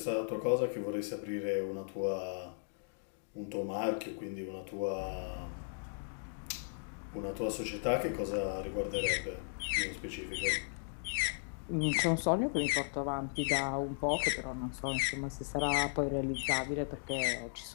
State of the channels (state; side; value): silent; right; digital silence